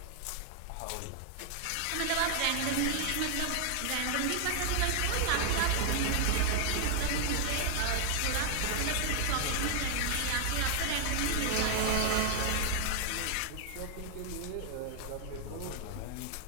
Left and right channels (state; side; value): different; both; correlation 0.00